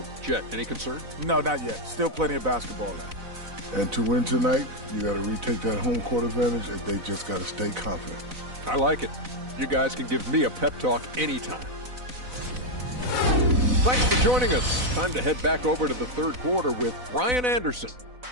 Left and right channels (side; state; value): left; late; 4.0 ms